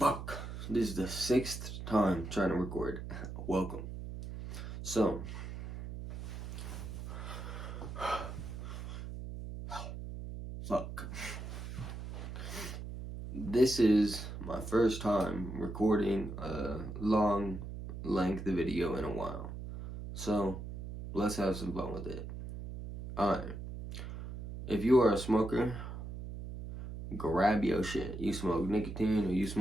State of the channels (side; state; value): right; noise; hum, 8 dB below the sound